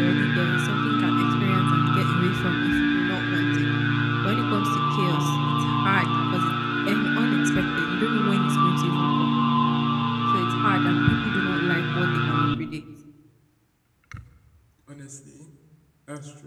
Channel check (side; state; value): both; identical; correlation 1.00